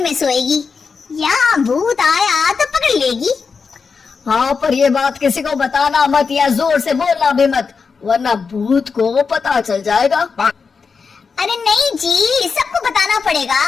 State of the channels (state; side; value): quieter; right; 5.3 dB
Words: में सोएगी, या भूत आया तो पकड़ लेगी। हाँ, पर ये बात किसी को बताना मत या जोर से बोलना भी मत, वरना भूत को पता चल जाएगा। अरे नहीं जी, सबको बताना